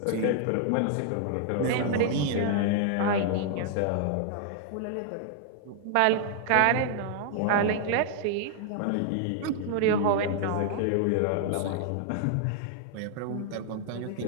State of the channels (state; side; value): different; both; correlation -0.01